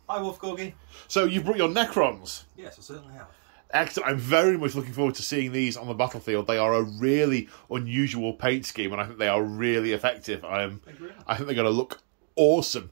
Hi, Wolf Corgi. So you've brought your Necrons. Yes, I certainly have. Excellent. I'm very much looking forward to seeing these on the battlefield. They are a really unusual paint scheme, and I think they are really effective. I think they're going to look awesome.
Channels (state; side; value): silent; left; 58 dB below the other